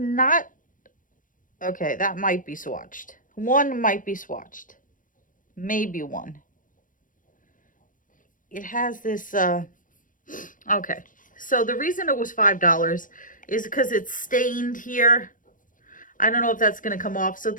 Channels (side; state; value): right; late; 0.39 ms